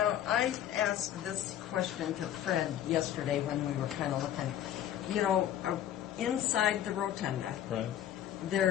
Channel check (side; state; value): right; quieter; 11.2 dB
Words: I asked this question to Fred yesterday when we were kind of looking. Inside the rotunda, Right.